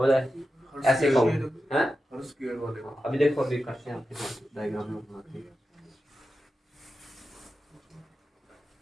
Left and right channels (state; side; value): normal; both; correlation 0.91